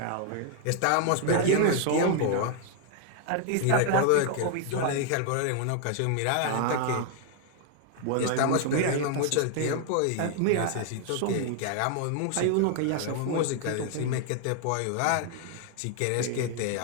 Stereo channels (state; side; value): different; both; correlation 0.00